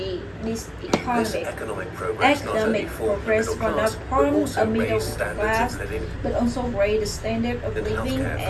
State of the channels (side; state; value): both; identical; correlation 1.00